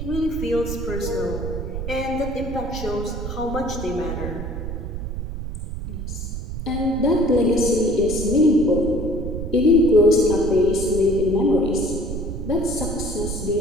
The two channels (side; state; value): right; noise; rumble, 6 dB below the sound